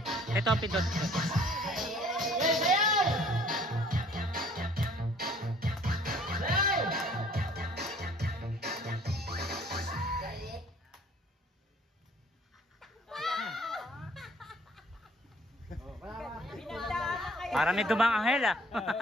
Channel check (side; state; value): both; normal; correlation 0.56